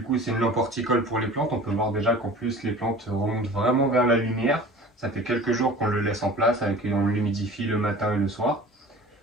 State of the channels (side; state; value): both; normal; correlation 0.42